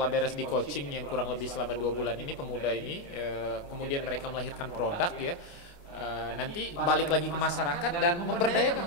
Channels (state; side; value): late; right; 29 ms